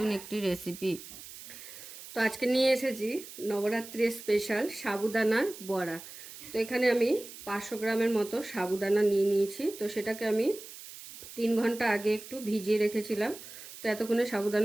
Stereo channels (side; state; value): right; noise; hiss, 14 dB below the sound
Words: একটি রেসিপি। তো আজকে নিয়ে এসেছি নবরাত্রির স্পেশাল সাবুদানার বড়া। তো এখানে আমি 500 গ্রামের মতো সাবুদানা নিয়ে নিয়েছি। তো সেটাকে আমি 3 ঘন্টা আগে একটু ভিজিয়ে রেখেছিলাম। তো এতক্ষণে